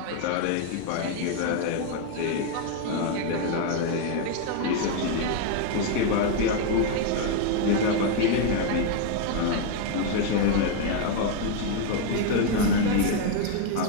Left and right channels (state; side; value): different; both; correlation 0.01